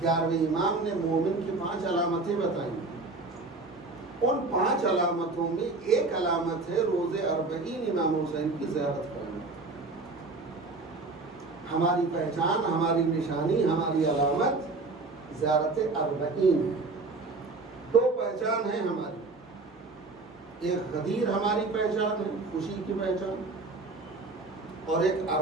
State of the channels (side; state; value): left; quieter; 3.5 dB